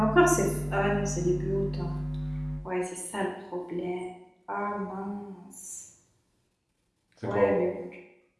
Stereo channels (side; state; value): both; identical; correlation 1.00